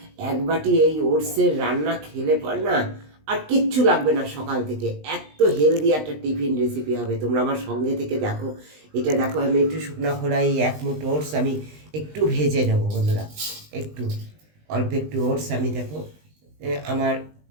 1 বাটি এই ওটসের রান্না খেলে পর না আর কিচ্ছু লাগবে না সকাল থেকে। এত হেলদি একটা টিফিন রেসিপি হবে, তোমরা আমার সঙ্গে থেকে দেখো। এটা দেখো আমি একটু শুকনো খোলায় 1 মুঠ ওটস আমি একটু ভেজে নেবো বন্ধুরা। একটু অল্প একটু ওটস আমি দেখো আমার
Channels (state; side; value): late; left; 20 ms